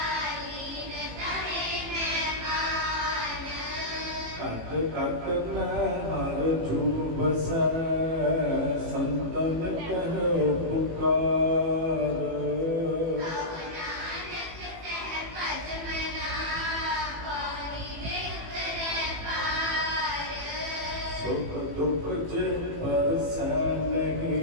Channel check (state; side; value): late; left; 18 ms